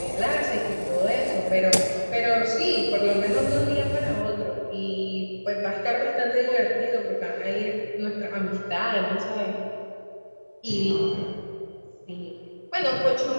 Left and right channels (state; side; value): inverted; both; correlation -1.00